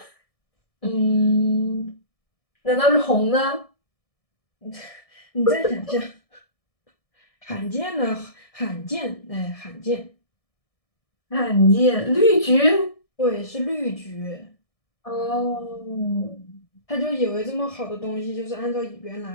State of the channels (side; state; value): right; late; 1.6 ms